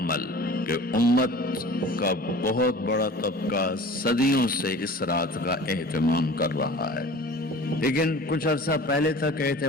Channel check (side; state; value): both; normal; correlation 0.42